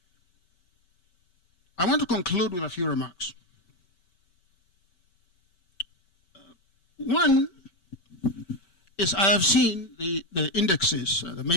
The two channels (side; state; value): right; late; 5.2 ms